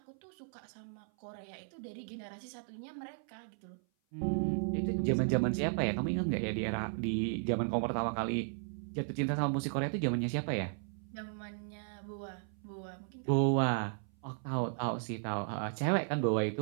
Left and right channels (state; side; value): silent; left; 54 dB below the other